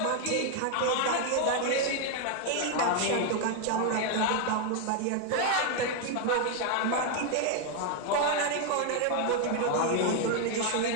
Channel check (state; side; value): different; both; correlation 0.01